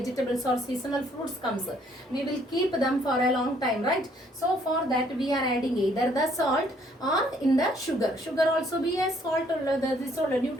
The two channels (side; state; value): both; normal; correlation 0.64